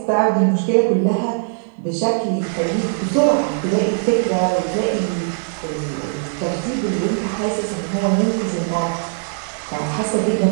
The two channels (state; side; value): silent; left; 66 dB below the other